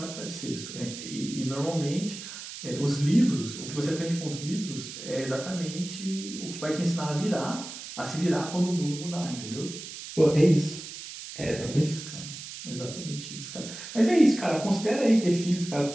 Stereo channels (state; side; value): noise; right; hiss, 11 dB below the sound